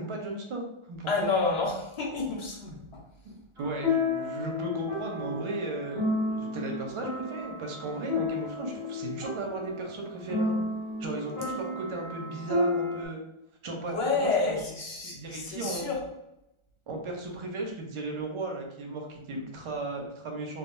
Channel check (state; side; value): late; left; 1.4 ms